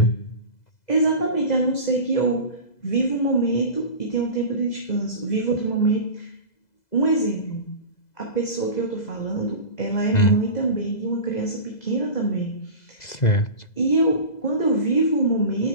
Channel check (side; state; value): right; late; 2.0 ms